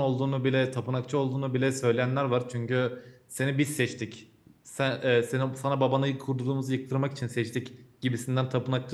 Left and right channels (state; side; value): identical; both; correlation 1.00